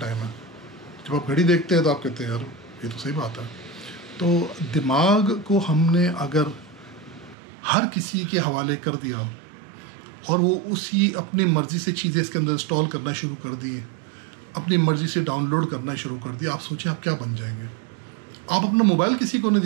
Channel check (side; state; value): left; drops out; at 7.4 s